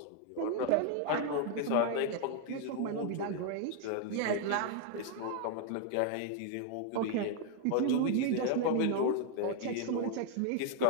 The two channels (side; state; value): both; different; correlation 0.00